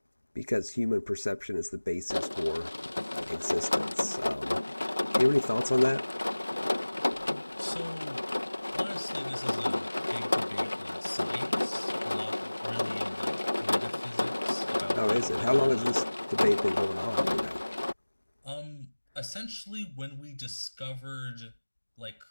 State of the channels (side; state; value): both; inverted; correlation -1.00